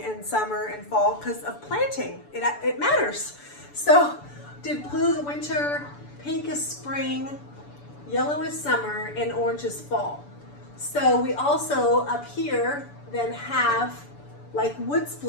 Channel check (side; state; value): right; late; 6.9 ms